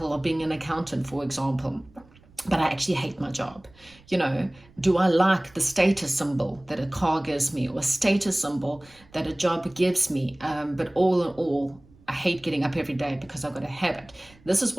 of being an accountant, for example, but I actually hate my job? Do I like the status symbol that a car gives me, or a status symbol that a job gives me? But all in all, I hate getting up every day because I've got to have it. This is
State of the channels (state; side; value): noise; right; rumble, 27 dB below the sound